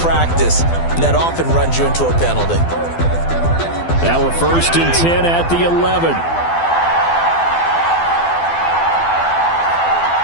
And that often runs you into a penalty. Now we're 1st and 10 at the 11.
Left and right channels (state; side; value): late; right; 12 ms